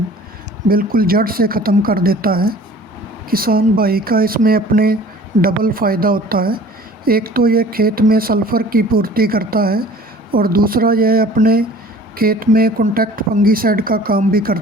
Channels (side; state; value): both; normal; correlation 0.47